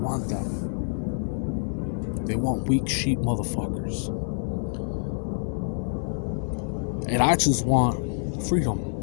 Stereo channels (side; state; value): right; silent; 60 dB below the other